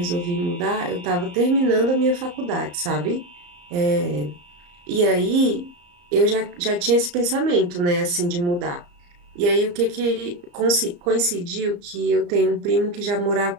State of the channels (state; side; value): late; left; 34 ms